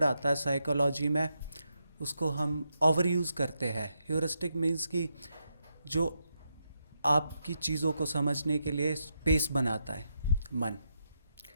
आता है साइकोलॉजी में, उसको हम ओवर यूज़ करते हैं। ह्यूरिस्टिक मीन्स कि जो आपकी चीज़ों को समझने के लिए स्पेस बनाता है मन।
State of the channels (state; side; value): inverted; both; correlation -0.83